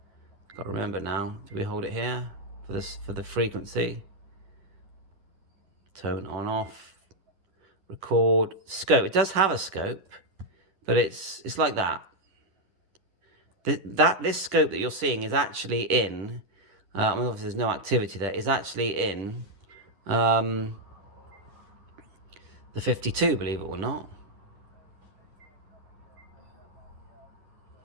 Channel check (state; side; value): late; left; 10 ms